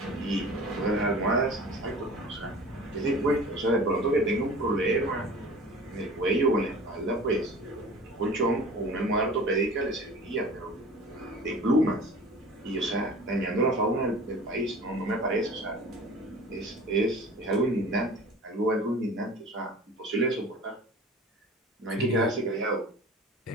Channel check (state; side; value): normal; both; correlation 0.41